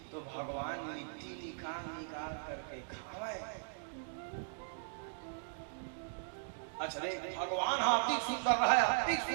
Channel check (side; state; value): left; silent; digital silence